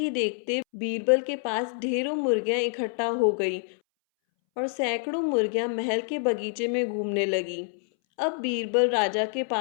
देखते बीरबल के पास ढेरों मुर्गियां इकट्ठा हो गई और सैकड़ों मुर्गियां महल के बगीचे में घूमने लगी। अब बीरबल राजा के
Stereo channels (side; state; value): right; silent; 60 dB below the other